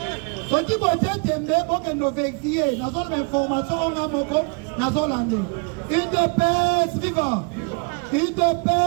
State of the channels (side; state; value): left; quieter; 34.8 dB